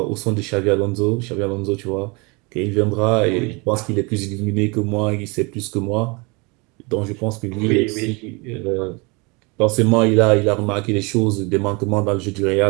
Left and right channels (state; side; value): quieter; left; 28.5 dB